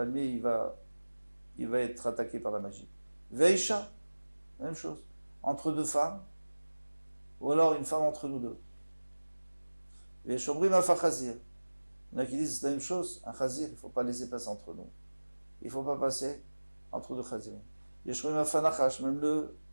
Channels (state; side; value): inverted; both; correlation -1.00